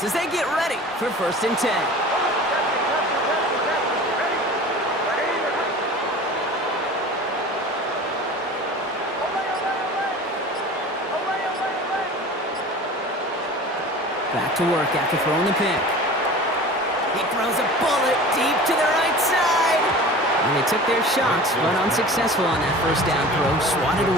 as they get ready for 1st and 10. Back to work after throwing the pick. He throws a bullet deep to the right side. And they took their shots, but unsuccessful on that 1st down throw, swatted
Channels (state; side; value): normal; both; correlation 0.39